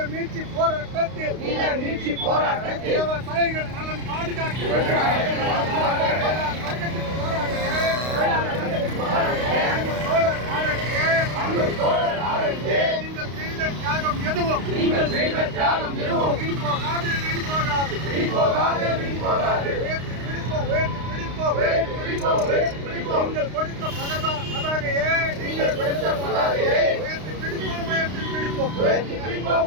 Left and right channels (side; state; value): left; late; 32 ms